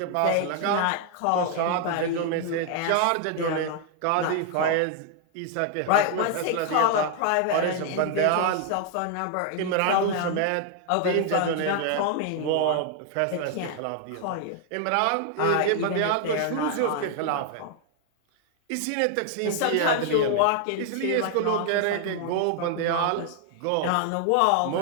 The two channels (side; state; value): both; different; correlation 0.00